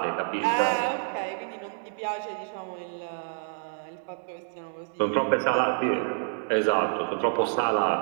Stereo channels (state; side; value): silent; left; digital silence